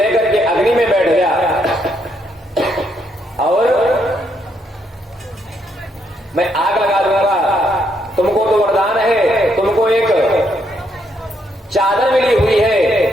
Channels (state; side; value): normal; both; correlation 0.75